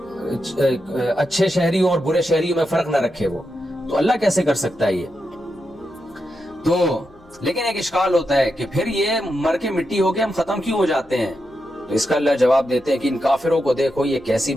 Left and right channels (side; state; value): left; noise; hum, 28 dB below the sound